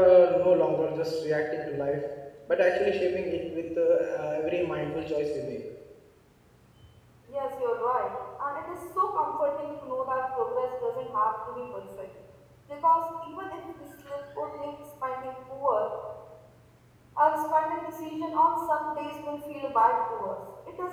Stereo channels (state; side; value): identical; both; correlation 1.00